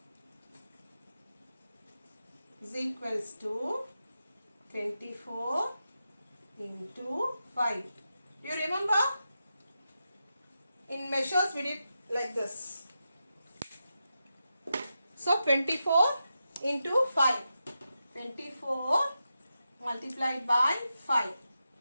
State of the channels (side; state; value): both; inverted; correlation -0.89